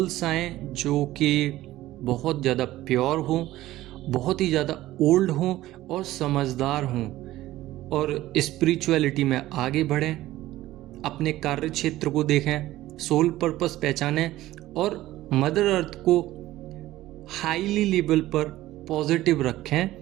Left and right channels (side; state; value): left; quieter; 15.7 dB